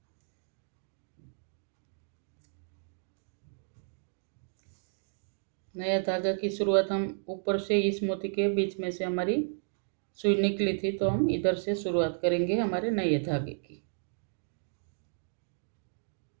नया धागा की शुरुआत हम ऊपर से इस मोती के बीच में से हमारी सुई निकली थी, तो हम इधर से शुरुआत करेंगे हमारे नए धागे की।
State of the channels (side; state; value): left; silent; digital silence